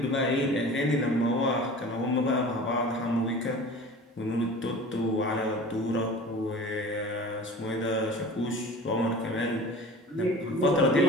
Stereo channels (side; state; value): both; normal; correlation 0.40